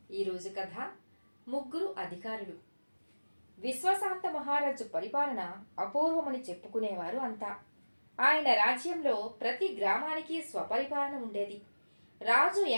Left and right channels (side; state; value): both; inverted; correlation -1.00